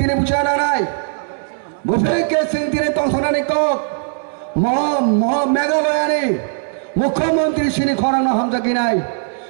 বুঝে না নাই বুঝে সিং তিনি তংসনানি কক মেঘালয়ানি মুখ্যমন্ত্রী সিনি খরাং হামজাকি নাই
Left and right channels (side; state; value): left; silent; 66 dB below the other